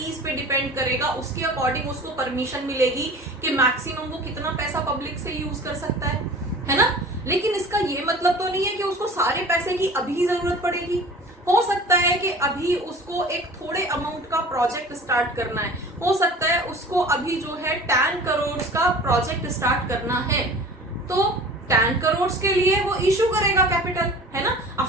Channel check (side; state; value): both; normal; correlation 0.41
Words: पे डिपेंड करेगा, उसके अकॉर्डिंग उसको परमिशन मिलेगी कि मैक्सिमम वो कितना पैसा पब्लिक से यूज कर सकता है ना। लेकिन इसका ये मतलब तो नहीं है कि उसको सारे पैसे की अभी जरूरत पड़ेगी। हो सकता है कि अभी उसको एक थोड़े अमाउंट का प्रोजेक्ट स्टार्ट करना है, हो सकता है उसको अभी जो है 10 करोड़ का प्रोजेक्ट स्टार्ट करना है, तो 10 करोड़ के लिए वो इशू करेगा कैपिटल, है ना।